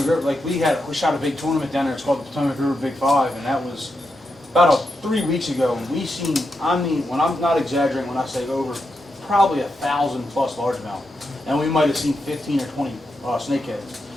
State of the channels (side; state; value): both; normal; correlation 0.85